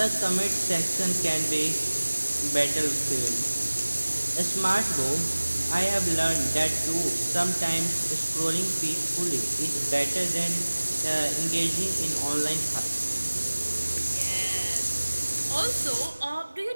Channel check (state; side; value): inverted; both; correlation -1.00